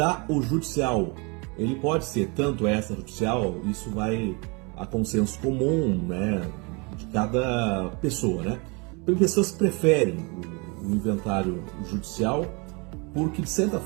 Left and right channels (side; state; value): left; quieter; 30.3 dB